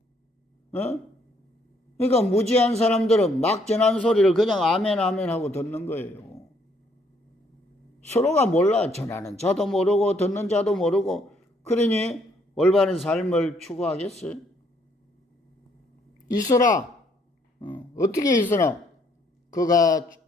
그러니까 무지한 사람들은 막 전하는 소리를 그냥 아멘 하고 듣는 거예요. 서로가 몰라. 전하는 자도 모르고 듣는 자도 모르고. 그러니 올바른 삶을 추구하겠어요? 있어라. 어떻게 있으나? 그가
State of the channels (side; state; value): both; normal; correlation 0.68